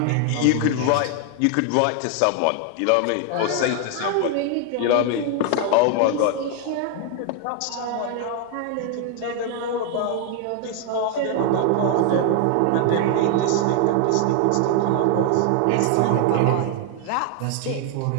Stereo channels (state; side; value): different; both; correlation 0.00